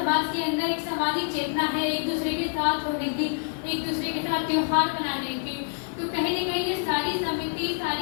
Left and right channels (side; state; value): right; silent; 60 dB below the other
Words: के अंदर एक सामाजिक चेतना है, एक दूसरे के साथ होने की, एक दूसरे के साथ त्योहार मनाने की। तो कहीं ना कहीं ये सारी समिति,